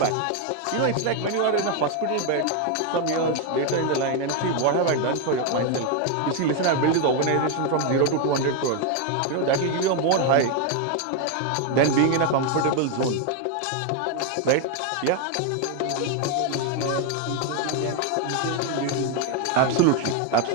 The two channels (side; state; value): both; different; correlation 0.01